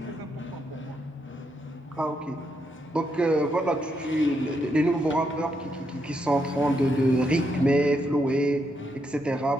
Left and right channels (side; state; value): both; normal; correlation 0.79